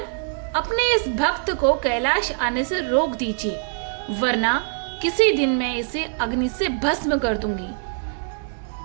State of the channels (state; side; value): silent; left; digital silence